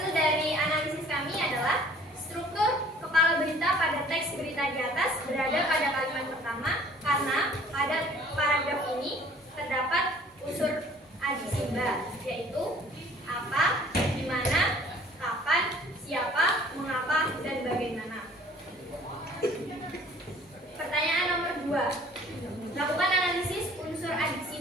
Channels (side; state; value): both; normal; correlation 0.53